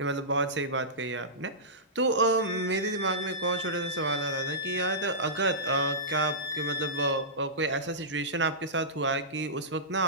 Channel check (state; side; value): normal; both; correlation -0.17